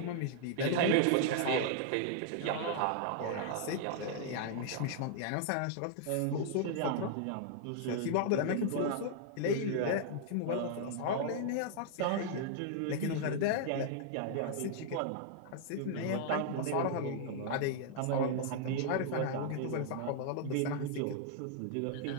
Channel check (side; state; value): both; different; correlation -0.01